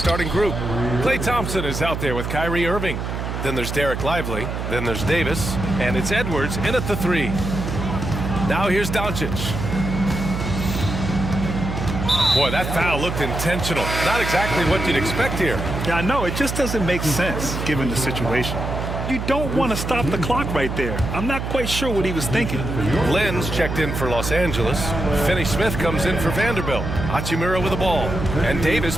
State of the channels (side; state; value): right; noise; hum, 4 dB below the sound